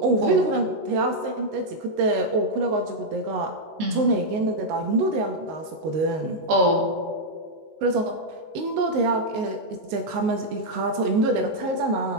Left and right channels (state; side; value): late; left; 19 ms